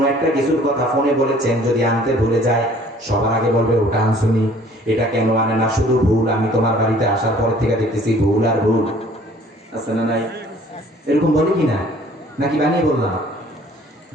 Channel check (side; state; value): both; normal; correlation 0.54